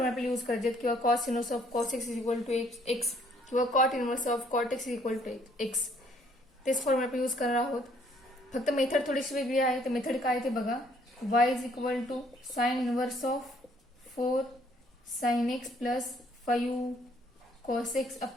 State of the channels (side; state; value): both; normal; correlation 0.64